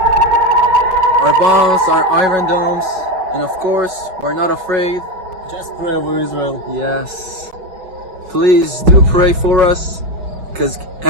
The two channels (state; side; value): late; left; 5.4 ms